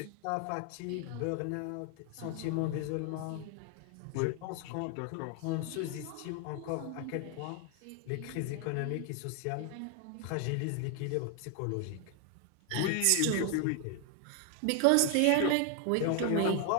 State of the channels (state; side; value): different; both; correlation 0.00